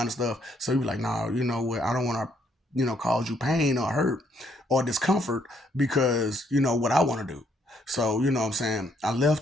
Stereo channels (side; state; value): both; normal; correlation 0.70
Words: of stuff. So you be like, nah, you know what? I don't want to, cause you pain or hurt or discomfort because what I want to do. So you know what I'm saying? I